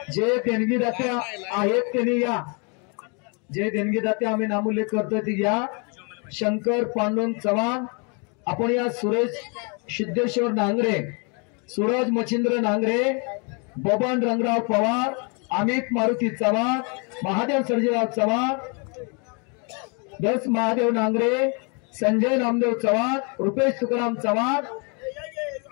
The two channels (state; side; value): quieter; right; 34.9 dB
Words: जे देणगीदाते आहेत त्यांनी या जे देणगीदाते आम्ही नामोल्लेख करतोय ती या शंकर पांडुरंग चव्हाण आपण या सुरेश सिद्धेश्वर नांगरे सूरज मच्छिंद्र नांगरे बबन रंगराव पवार अमित मारुती चव्हाण महादेव सर्जेराव चव्हाण दस महादेव नांगरे संजय नामदेव चव्हाण रुपेश तुकाराम चव्हाण